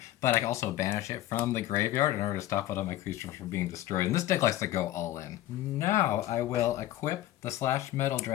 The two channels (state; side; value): quieter; right; 14.3 dB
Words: but I can also banish it from the graveyard in order to stop one of my creatures from being destroyed. And this deck likes to go all in. Now I will equip the Slash Metal